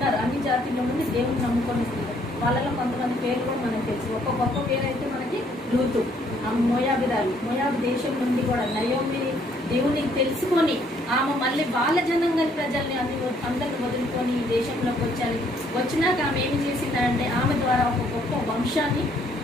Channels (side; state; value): both; normal; correlation 0.66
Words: అన్ని జాతిల్లో నుండి దేవుని నమ్ముకొని స్త్రీలు, వాళ్ళలో కొంతమంది పేరు కూడా మనకు తెలుసు. ఒక గొప్ప పేరు అయితే మనకి రూతు, మోయాబిరాలు, మోయాబు దేశం నుండి కూడా నయోమి దేవుని తెలుసుకొని ఆమె మళ్ళీ వాళ్ళ జనంగాని ప్రజల్ని అందరిని వదులుకొని ఈ దేశంలోకి వచ్చినాక ఆమె ఏమి చేసిందంటే ఆమె ద్వారా ఒక గొప్ప వంశాన్ని,